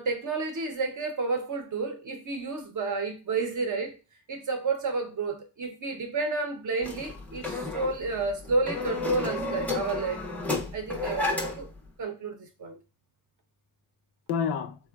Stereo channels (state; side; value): normal; both; correlation -0.18